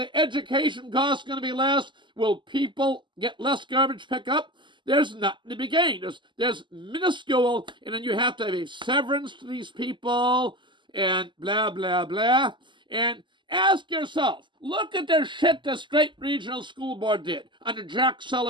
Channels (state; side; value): late; left; 0.23 ms